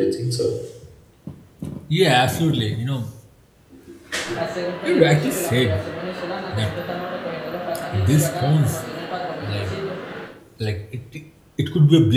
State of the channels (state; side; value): identical; both; correlation 1.00